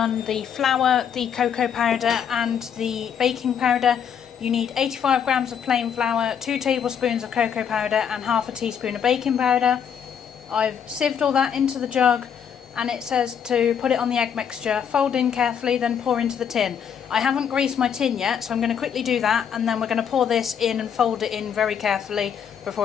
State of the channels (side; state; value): right; quieter; 8.0 dB